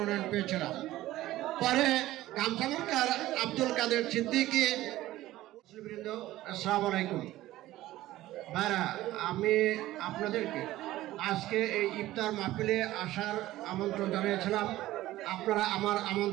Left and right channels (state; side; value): quieter; left; 15.8 dB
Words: পেয়েছিলাম। পরে গামছামুরকার আব্দুল কাদের সিদ্দিকী। আসসালামু আলাইকুম ভাইরা, আমি আপনাদেরকে আজকে এই ইফতার মাহফিলে আসার আমন্ত্রণ জানিয়েছিলাম। আপনারা আমার